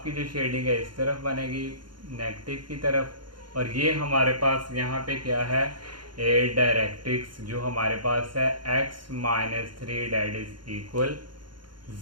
की जो शेडिंग है इस तरफ बनेगी नेगेटिव की तरफ, और ये हमारे पास यहाँ पे क्या है डायरेक्ट्रिक्स जो हमारे पास है x-3 डेट इज इक्वल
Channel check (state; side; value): late; left; 0.72 ms